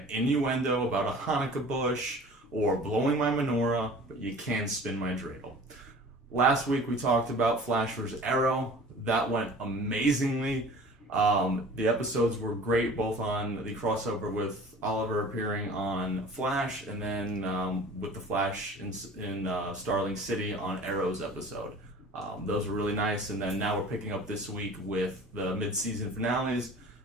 innuendo about a Hanukkah bush or blowing my menorah, but you can spin my dreidel. Last week we talked about Flash vs. Arrow. That went amazingly. The episodes were great, both on the crossover with Oliver appearing on Flash, and then with the Flash in Starling City on Arrow's episode. Those were really nice, and then now we're picking up this week with the mid-season finales.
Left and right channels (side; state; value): both; normal; correlation 0.44